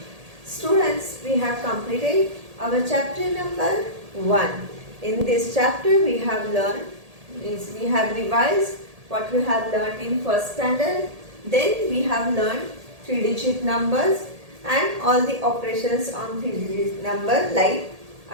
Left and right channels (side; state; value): left; late; 1.8 ms